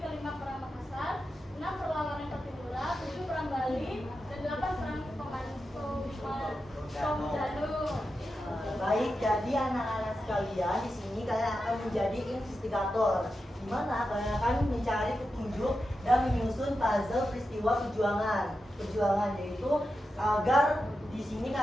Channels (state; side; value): normal; both; correlation 0.90